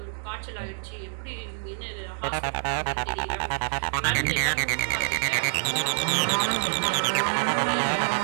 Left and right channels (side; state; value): left; silent; 60 dB below the other